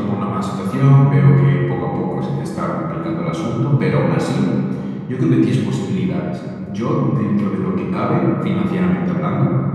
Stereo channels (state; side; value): identical; both; correlation 1.00